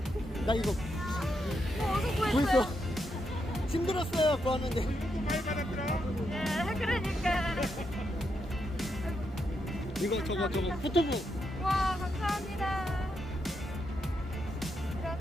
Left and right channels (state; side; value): normal; both; correlation 0.82